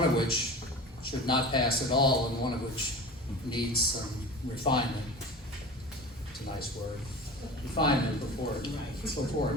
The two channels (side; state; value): both; normal; correlation 0.33